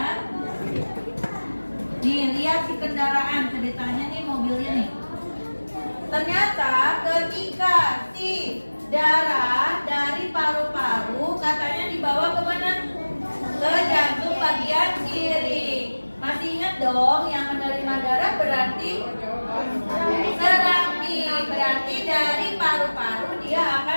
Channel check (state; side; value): inverted; both; correlation -1.00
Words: Nih, lihat si kendaraan, ceritanya nih mobilnya nih. Ternyata ketika si darah dari paru-paru katanya dibawa kemana? Ke jantung bagian kiri. Masih ingat dong yang menerima darah berarti serambi. Berarti dari paru-paru dia